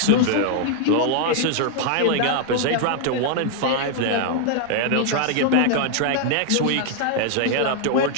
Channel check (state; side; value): different; both; correlation 0.00